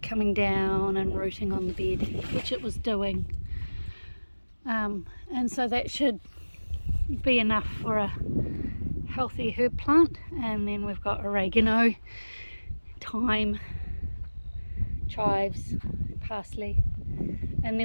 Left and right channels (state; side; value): inverted; both; correlation -1.00